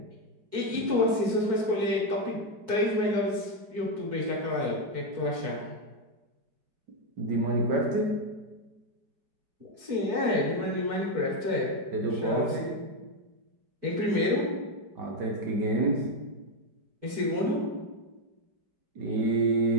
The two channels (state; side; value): late; left; 4.5 ms